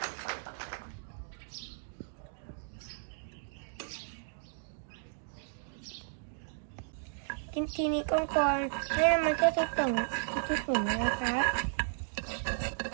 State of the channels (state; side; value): silent; left; digital silence